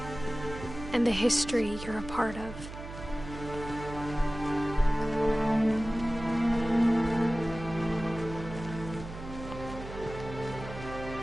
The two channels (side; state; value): right; noise; hum, 11 dB below the sound